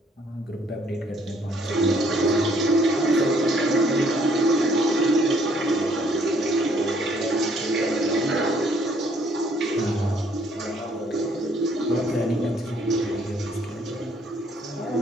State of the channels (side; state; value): both; normal; correlation 0.64